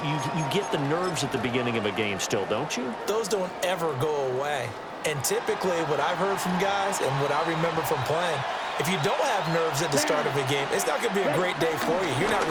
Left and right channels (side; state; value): both; identical; correlation 1.00